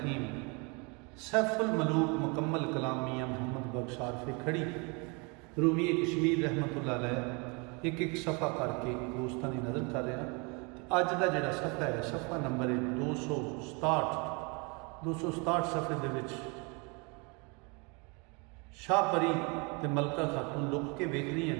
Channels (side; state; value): left; quieter; 31.1 dB